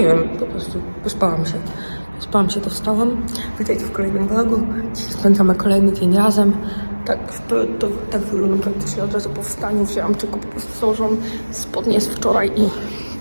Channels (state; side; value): inverted; both; correlation -1.00